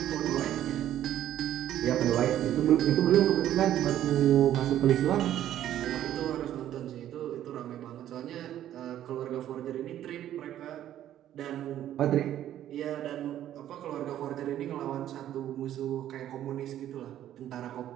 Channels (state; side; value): quieter; left; 11.8 dB